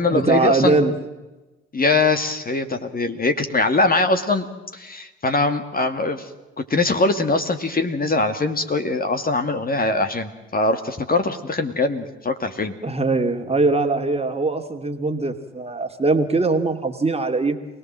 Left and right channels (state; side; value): normal; both; correlation 0.22